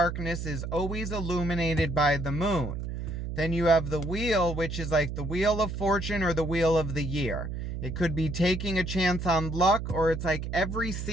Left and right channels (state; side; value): noise; right; hum, 5 dB below the sound